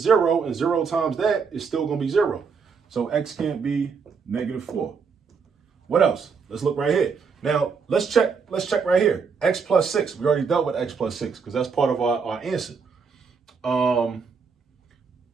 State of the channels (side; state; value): left; quieter; 5.6 dB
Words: 0 and 0 times that is still going to be 0. So x can't be negative 4. What else? Let's look right here. Now, let's check right here. X plus 6. We already dealt with x plus 6 because that's part of our answer.